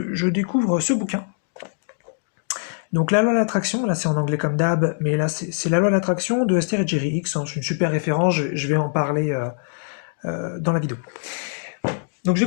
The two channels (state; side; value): silent; right; digital silence